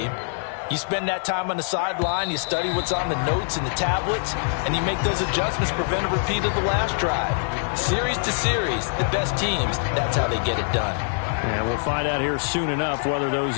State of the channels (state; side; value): silent; right; digital silence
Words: You spend that time on the sideline, you study what's on the notes and the tablets, and you make those adjustments, prevent a repeat of the last drive. Series to series, the best teams, that's how they get it done. And we'll find out here soon enough whether those